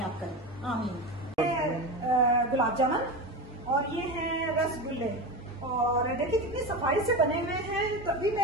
करे, आमीन। गुलाब जामुन और ये है रसगुल्ले, और देखिए कितनी सफाई से बने हुए हैं। तभी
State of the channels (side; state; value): both; normal; correlation 0.23